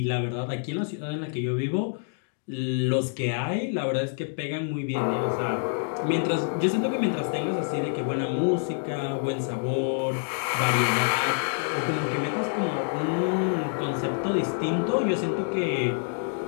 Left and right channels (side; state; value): right; silent; 60 dB below the other